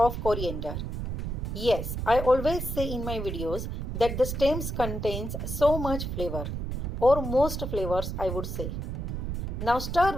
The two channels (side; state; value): right; noise; rumble, 3 dB below the sound